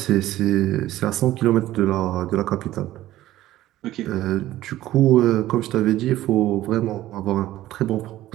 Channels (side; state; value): left; quieter; 14.8 dB